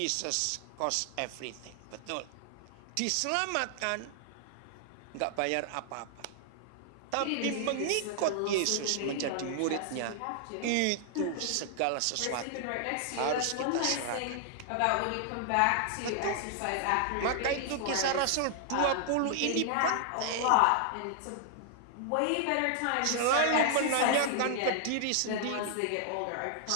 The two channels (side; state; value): both; different; correlation -0.01